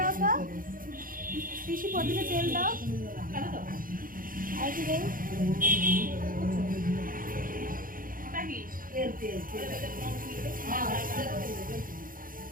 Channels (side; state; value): left; late; 0.40 ms